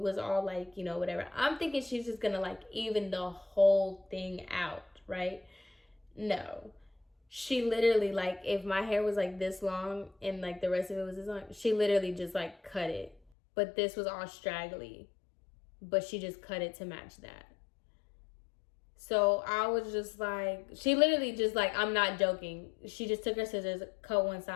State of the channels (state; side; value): drops out; right; at 13.2 s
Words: all like, you know, whatever. I'm thinking she's just going to, like, even the whole thing out, right? No. She literally, like, if my hair was, like, this long and, like, the rest of it was this long, she literally just, like, cut it. But this was all straggly. But she just cut it to match that. So I was just like, she literally just like, I'm not joking. She just took her scissors, cut one